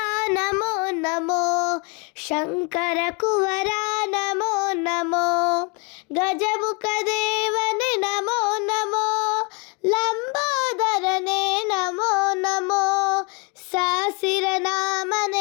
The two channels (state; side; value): quieter; right; 31.5 dB